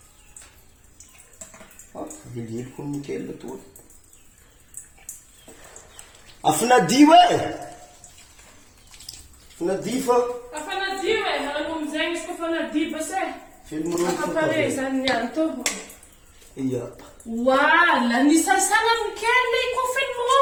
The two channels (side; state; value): both; identical; correlation 1.00